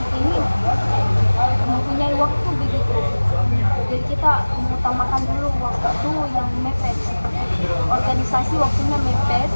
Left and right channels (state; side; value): inverted; both; correlation -1.00